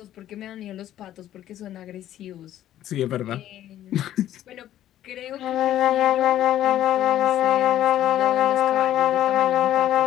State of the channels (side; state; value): right; quieter; 12.4 dB